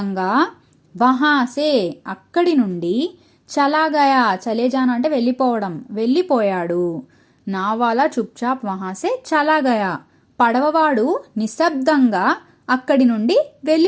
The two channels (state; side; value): identical; both; correlation 1.00